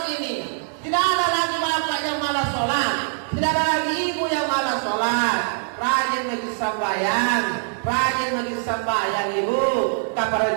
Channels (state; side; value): silent; left; digital silence